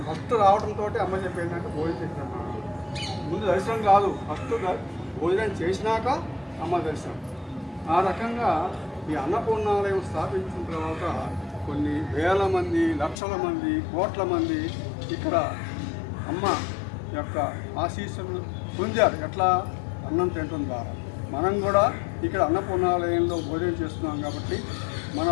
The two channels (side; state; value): right; drops out; at 13.2 s